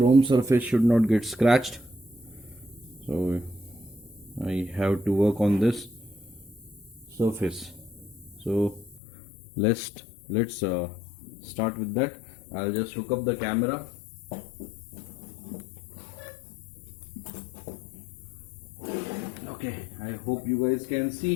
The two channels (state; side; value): drops out; right; at 9.0 s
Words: surface should not get scratched. So I have to work on this surface. So let's start with that. I'll just hook up the camera. Okay, I hope you guys can